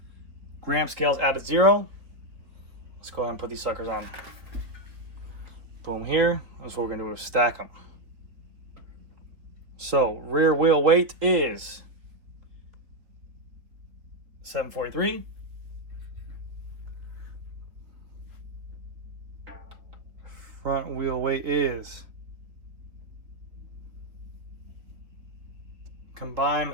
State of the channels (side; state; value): left; late; 3.4 ms